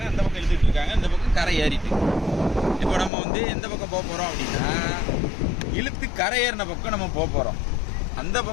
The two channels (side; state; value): right; drops out; at 3.1 s